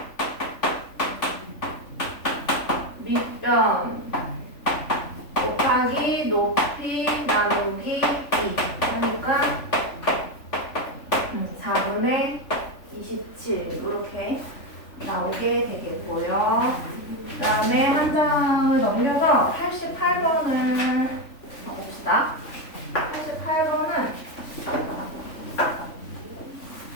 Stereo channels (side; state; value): right; late; 3.5 ms